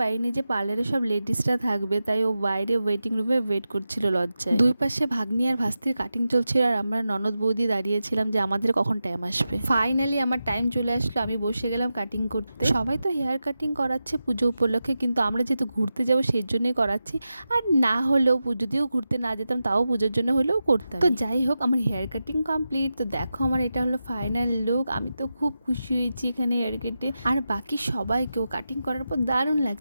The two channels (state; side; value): inverted; both; correlation -0.91